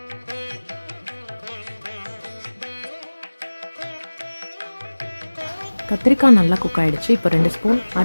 கத்திரிக்காய் நல்லா குக் ஆகிடுச்சு. இப்போ 2 ஸ்பூன்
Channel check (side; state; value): both; inverted; correlation -1.00